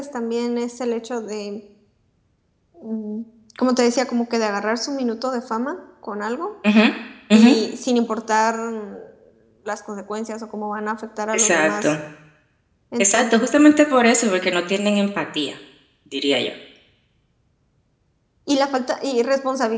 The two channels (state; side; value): identical; both; correlation 1.00